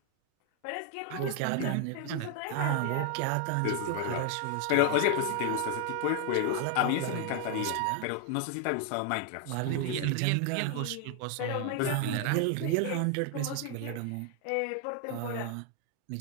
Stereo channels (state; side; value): different; both; correlation 0.00